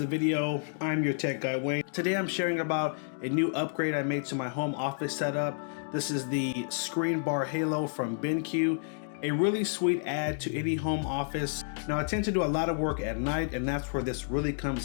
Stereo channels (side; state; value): right; silent; digital silence